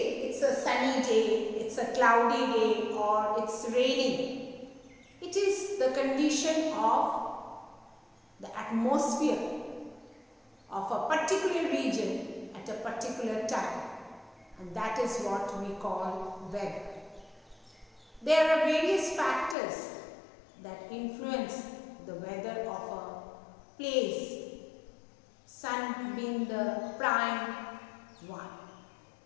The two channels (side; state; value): right; drops out; at 19.6 s